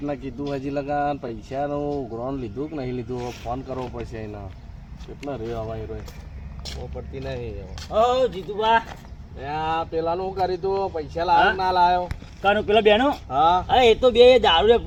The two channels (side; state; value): both; identical; correlation 1.00